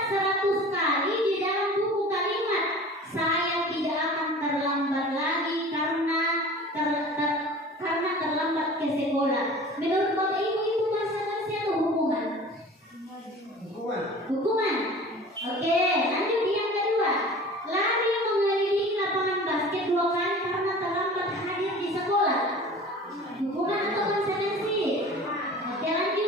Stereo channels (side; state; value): both; normal; correlation 0.41